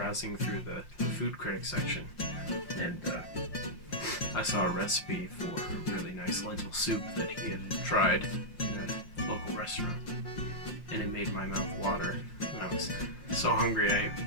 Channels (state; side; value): late; right; 5.7 ms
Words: through the food critic section, and I saw a recipe for a really nice lentil soup that he had tried in a local restaurant, and it made my mouth water. And I was so hungry